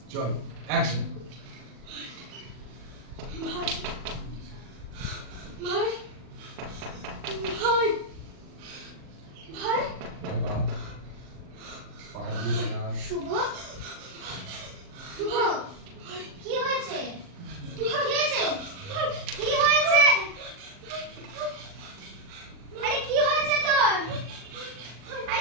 চল অ্যাকশন। ভাই ভাই ভাই ভাই শুভ, শুভ কি হয়েছে? কি হয়েছে? কি হয়েছে? আরে কি হয়েছে তোর?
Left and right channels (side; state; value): left; late; 40 ms